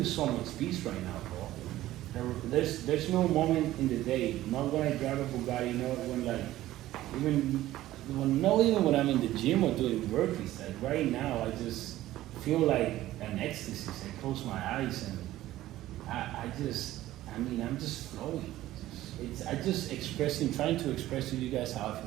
so much peace right now, bro. There's no moment in the day, not when I drive a Bugatti, not when like, not even when I'm in the gym or doing burpees. Like right now, I just feel like an ecstasy. I close my eyes and I'm just flowing. Trying to express to you guys how I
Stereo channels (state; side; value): quieter; left; 15.0 dB